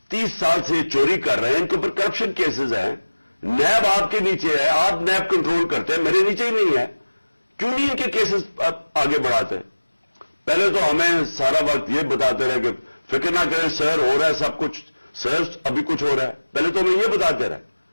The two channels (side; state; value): both; inverted; correlation -1.00